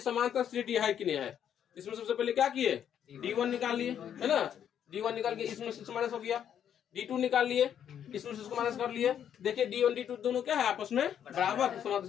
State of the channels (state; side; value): quieter; right; 9.2 dB